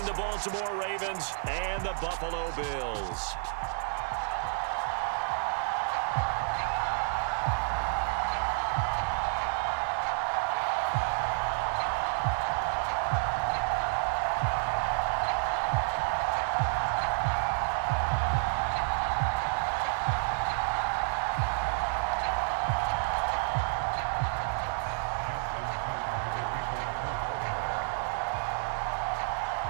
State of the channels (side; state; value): left; silent; 58 dB below the other